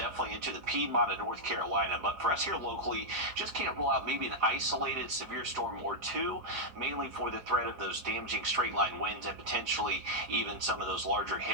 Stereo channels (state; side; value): late; left; 4.9 ms